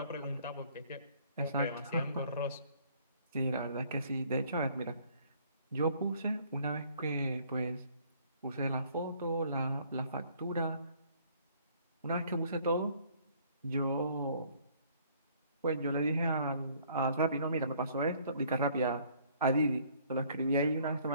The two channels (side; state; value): both; inverted; correlation -0.60